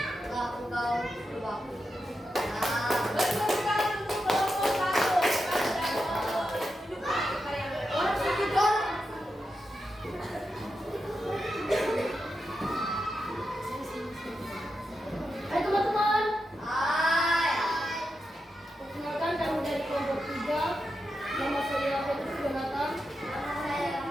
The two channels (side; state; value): both; normal; correlation 0.88